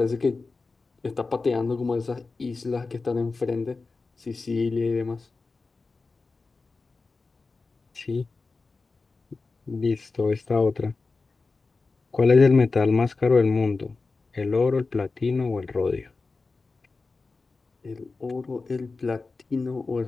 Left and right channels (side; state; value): right; quieter; 4.0 dB